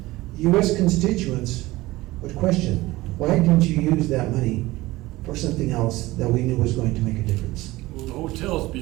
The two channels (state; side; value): quieter; left; 18.9 dB